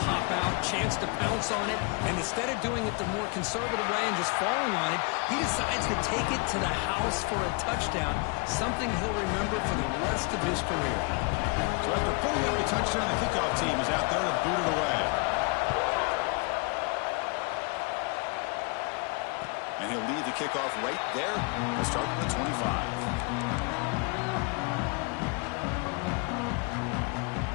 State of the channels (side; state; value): right; quieter; 32.7 dB